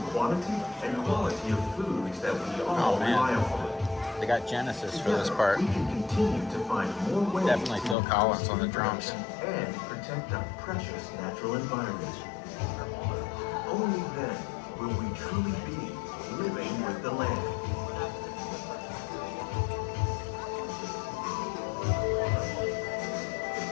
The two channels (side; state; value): right; drops out; at 8.0 s